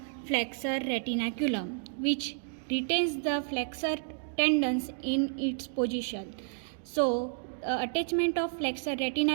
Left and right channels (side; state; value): left; silent; digital silence